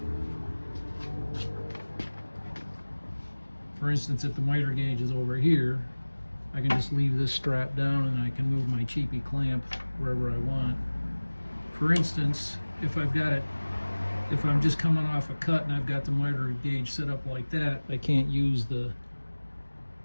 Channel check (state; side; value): inverted; both; correlation -1.00